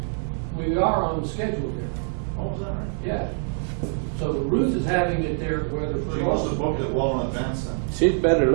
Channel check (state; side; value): silent; left; 58 dB below the other